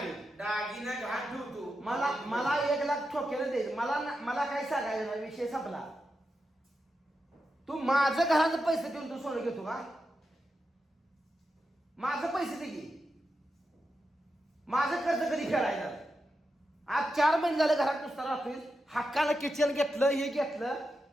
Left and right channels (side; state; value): both; normal; correlation 0.88